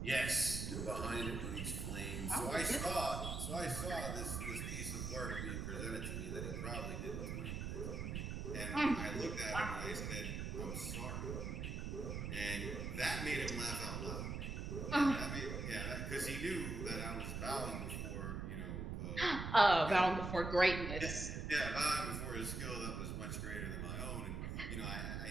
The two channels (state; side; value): noise; right; rumble, 3 dB below the sound